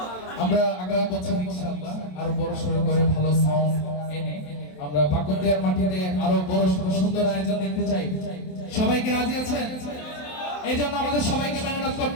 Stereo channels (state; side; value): late; right; 27 ms